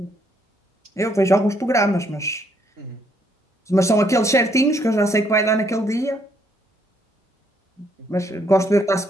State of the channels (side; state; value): both; normal; correlation 0.70